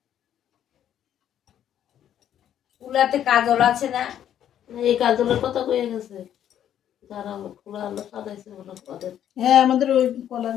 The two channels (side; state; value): right; quieter; 10.4 dB